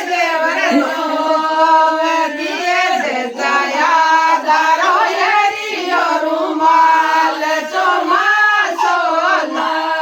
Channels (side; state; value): both; identical; correlation 1.00